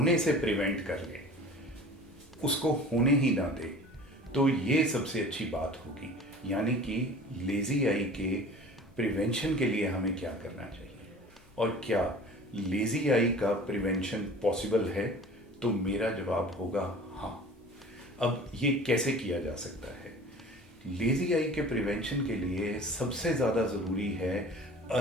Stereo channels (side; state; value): both; normal; correlation 0.42